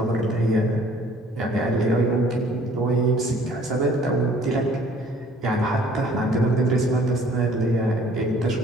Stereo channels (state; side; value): normal; both; correlation 0.56